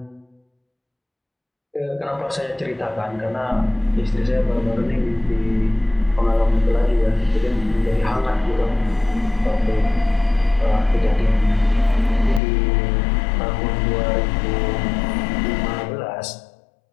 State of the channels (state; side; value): drops out; right; at 12.4 s